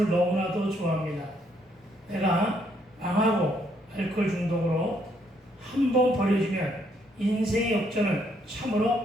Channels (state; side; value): normal; both; correlation 0.71